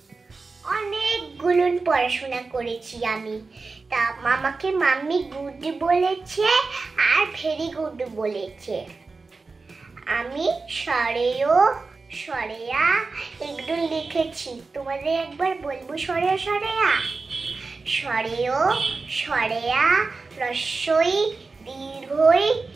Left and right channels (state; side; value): quieter; left; 4.1 dB